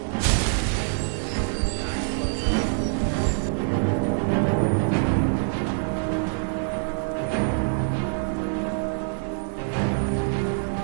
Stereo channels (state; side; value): silent; left; 62 dB below the other